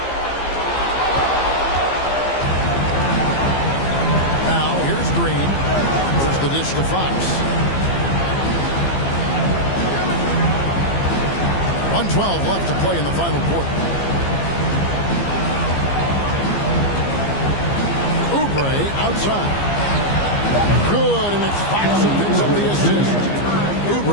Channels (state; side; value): late; right; 15 ms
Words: Now here's Green. Here's the dish to Fox. 1:12 left to play in the final quarter. Oubre outside. Good, and it's Fox who picks up the assist.